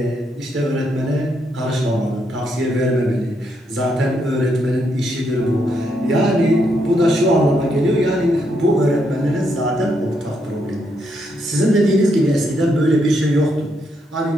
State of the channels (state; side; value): normal; both; correlation 0.77